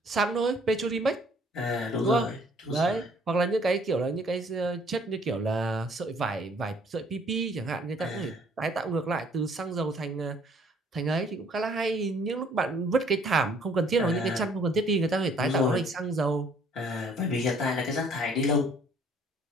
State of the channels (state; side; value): normal; both; correlation 0.60